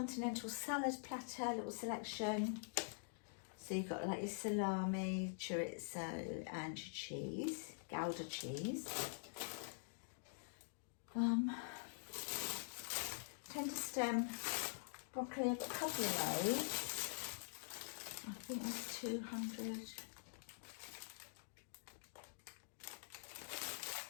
salad platter, little selection. So you've got like your salami, chorizo and your cheese, Gouda cheese. Tender stem broccoli, I've got a couple of those. I think there's 200.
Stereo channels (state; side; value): silent; right; digital silence